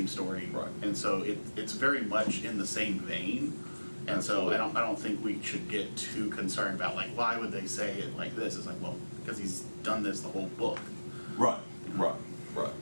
story, Right. And so it's very much in the same vein. And so I don't think we should get too concerned about like why would they say it like this? It's like, well, because he's done this the whole book. Right.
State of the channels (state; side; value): inverted; both; correlation -1.00